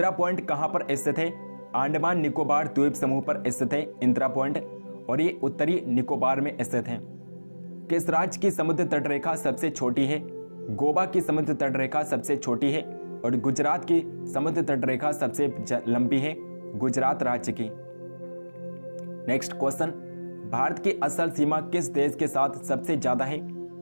पॉइंट कहां पर स्थित है? अंडमान निकोबार द्वीप समूह पर स्थित है इंदिरा पॉइंट और ये उत्तरी निकोबार में स्थित है। किस राज्य की समुद्र तट रेखा सबसे छोटी है? गोवा की समुद्र तट रेखा सबसे छोटी है और गुजरात की समुद्र तट रेखा सबसे लंबी है, गुजरात राज्य की। नेक्स्ट क्वेश्चन, भारत की असल सीमा किस देश के साथ सबसे ज्यादा है?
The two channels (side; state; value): both; inverted; correlation -1.00